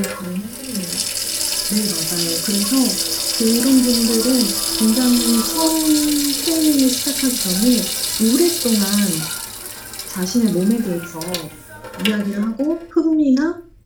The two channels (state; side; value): identical; both; correlation 1.00